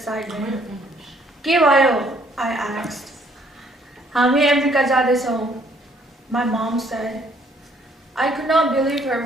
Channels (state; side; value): normal; both; correlation 0.64